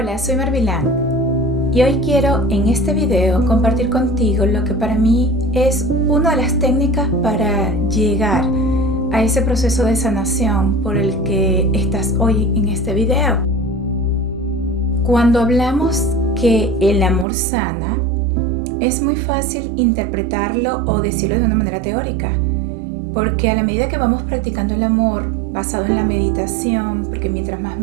soy Marvilán y hoy quiero en este video compartir contigo lo que para mí es una de las técnicas para llegar a ese proceso de sanación por el que estás hoy en este video. Cuando hablamos que el amor sana, es muy fácil interpretarlo o decirlo de una manera teórica, porque a la medida que vamos practicando el amor basado en la meditación, porque mientras más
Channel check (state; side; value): drops out; left; at 17.2 s